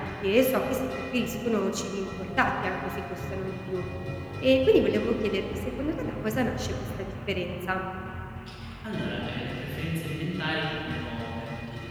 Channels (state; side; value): identical; both; correlation 1.00